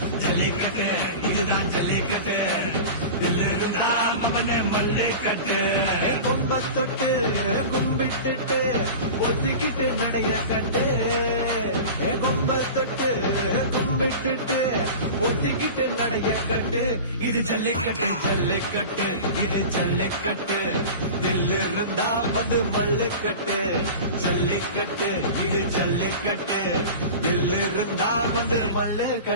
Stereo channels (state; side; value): inverted; both; correlation -0.33